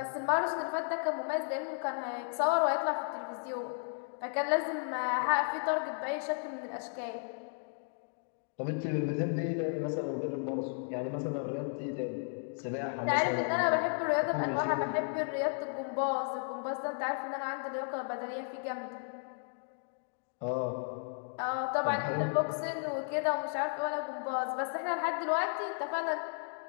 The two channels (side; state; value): right; silent; 55 dB below the other